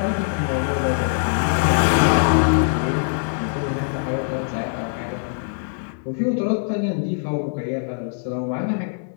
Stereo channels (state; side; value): silent; right; 55 dB below the other